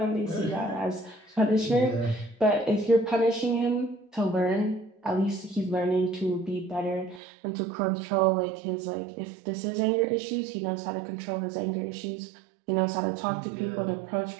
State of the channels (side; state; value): left; drops out; at 7.2 s